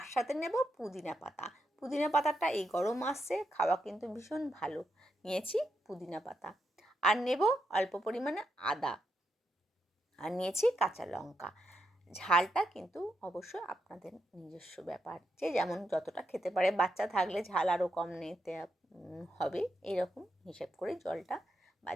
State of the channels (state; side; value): normal; both; correlation 0.83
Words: সাথে নেব পুদিনা পাতা। পুদিনা পাতাটা এই গরম মাসে খাওয়া কিন্তু ভীষণ ভালো। নিয়েছি পুদিনা পাতা, আর নেব অল্প পরিমাণে আদা, আর নিয়েছি কাঁচা লঙ্কা। ঝালটা কিন্তু অবশ্যই আপনাদের নিজস্ব ব্যাপার, যে যেমন যতটা খেতে পারে। বাচ্চা থাকলে ঝাল আরও কম নিতে হবে, এরকম হিসেব করে জলটা বা